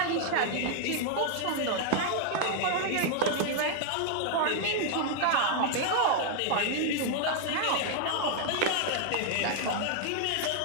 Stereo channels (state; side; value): different; both; correlation 0.00